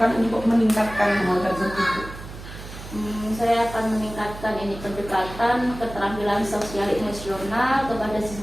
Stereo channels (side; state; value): right; noise; hum, 13 dB below the sound